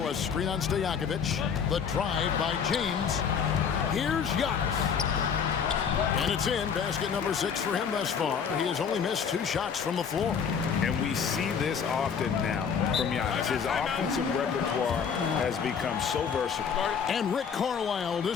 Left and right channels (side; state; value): right; quieter; 6.9 dB